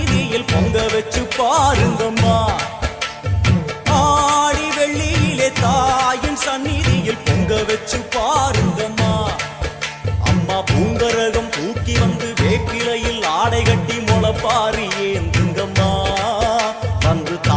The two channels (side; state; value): both; identical; correlation 1.00